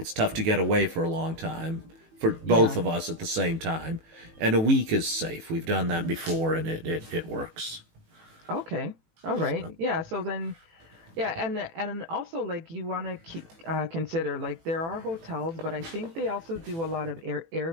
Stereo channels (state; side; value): late; left; 18 ms